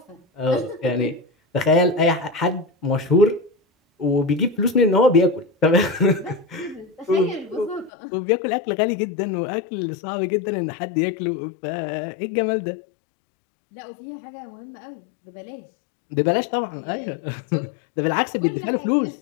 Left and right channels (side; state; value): right; drops out; at 7.9 s